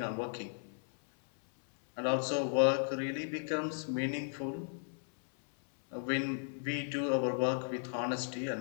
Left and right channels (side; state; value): right; silent; 54 dB below the other